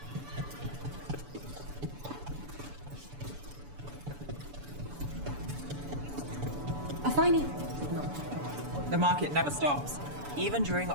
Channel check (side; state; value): left; late; 6.9 ms